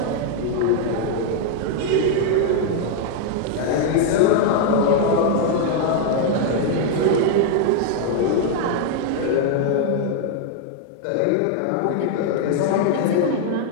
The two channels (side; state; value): both; different; correlation 0.00